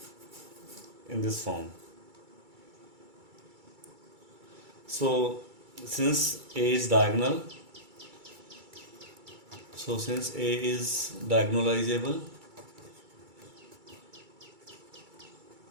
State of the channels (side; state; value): left; late; 2.3 ms